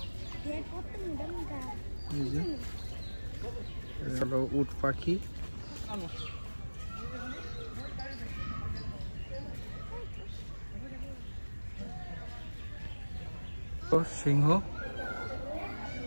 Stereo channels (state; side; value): inverted; both; correlation -1.00